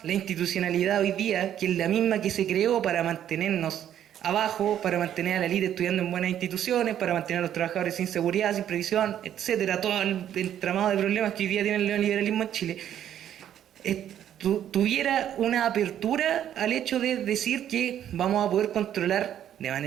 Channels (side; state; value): left; quieter; 10.5 dB